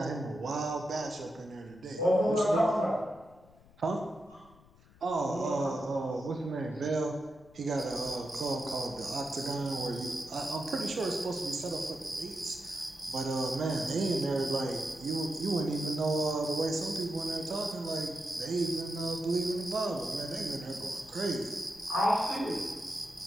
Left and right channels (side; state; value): left; noise; rumble, 26 dB below the sound